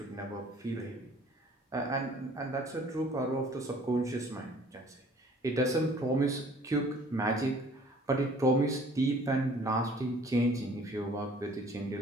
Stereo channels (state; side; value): normal; both; correlation 0.53